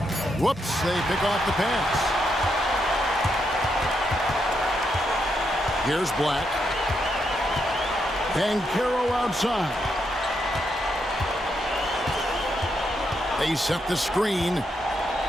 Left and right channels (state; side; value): normal; both; correlation 0.80